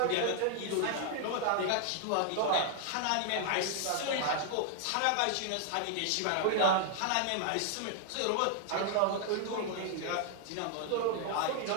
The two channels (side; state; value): both; different; correlation 0.00